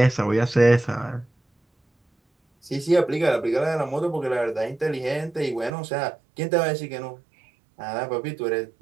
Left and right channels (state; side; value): drops out; left; at 5.7 s